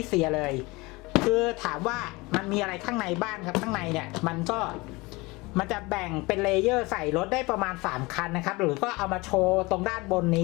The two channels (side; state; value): right; quieter; 23.6 dB